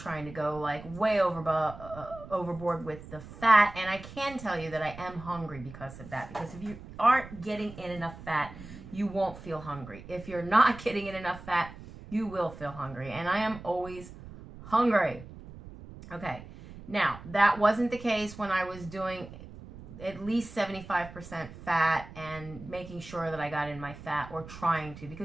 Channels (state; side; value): noise; right; rumble, 15 dB below the sound